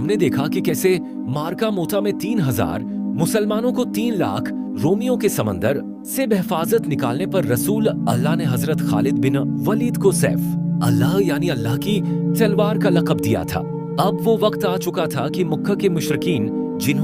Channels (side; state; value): both; identical; correlation 1.00